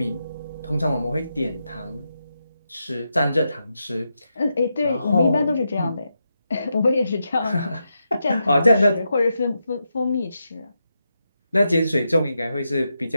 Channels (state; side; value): inverted; both; correlation -0.85